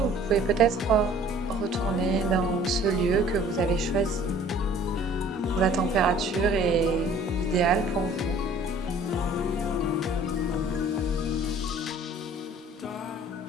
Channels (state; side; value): normal; both; correlation 0.52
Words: vous pouvez peut-être retourner dans ce lieu que vous avez choisi, où la température est idéale pour vous.